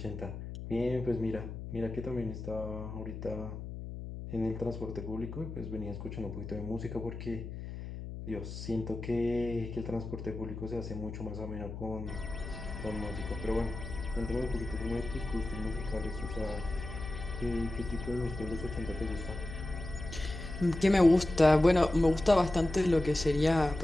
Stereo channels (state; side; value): noise; left; hum, 8 dB below the sound